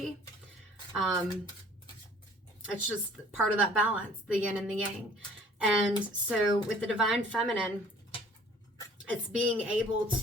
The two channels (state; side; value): normal; both; correlation 0.53